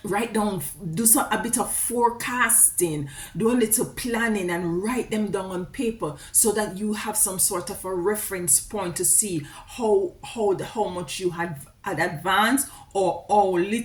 write down, do a bit of forecasting, do a little planning, and write them down on paper, so that you have some sort of a reference point to see how much you had advanced, or how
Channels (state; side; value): identical; both; correlation 1.00